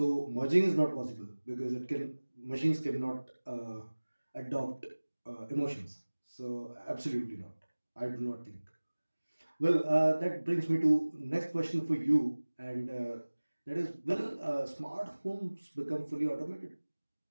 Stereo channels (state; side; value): inverted; both; correlation -1.00